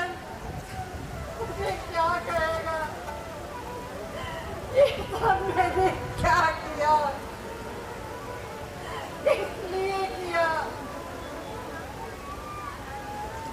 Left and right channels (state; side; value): identical; both; correlation 1.00